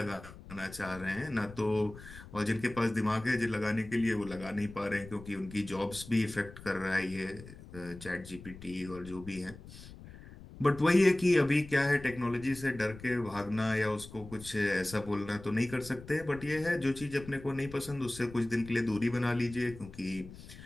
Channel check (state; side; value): noise; left; rumble, 16 dB below the sound